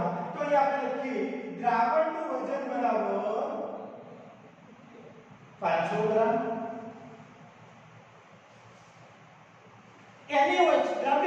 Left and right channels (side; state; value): both; identical; correlation 1.00